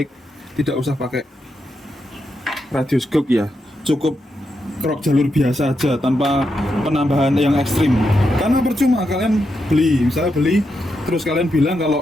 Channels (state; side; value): normal; both; correlation 0.84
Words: tidak usah pakai radius GOP ya, cukup trok jalur biasa aja tanpa penambahan yang ekstrim. Karena percuma kalian beli terus kalian bilang